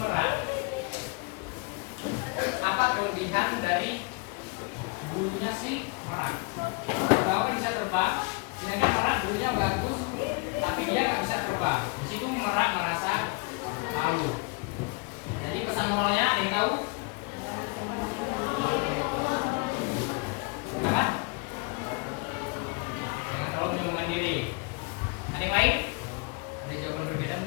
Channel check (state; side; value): quieter; right; 30.0 dB